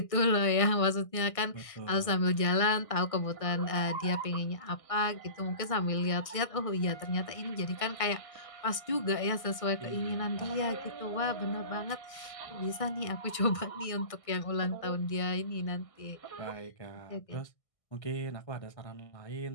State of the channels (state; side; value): late; right; 1.6 ms